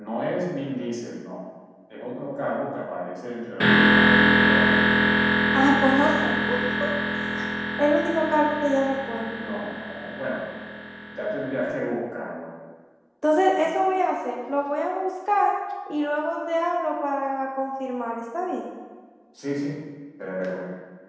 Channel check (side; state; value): both; identical; correlation 1.00